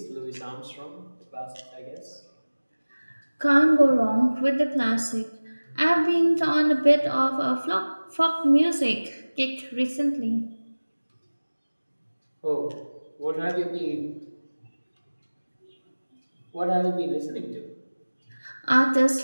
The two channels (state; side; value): inverted; both; correlation -1.00